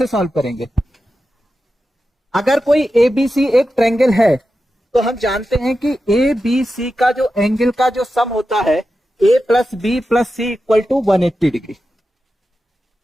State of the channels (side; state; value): both; normal; correlation 0.91